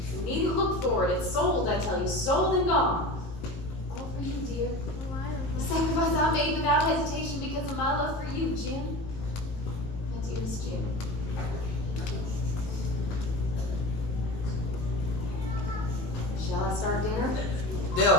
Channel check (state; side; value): late; right; 19 ms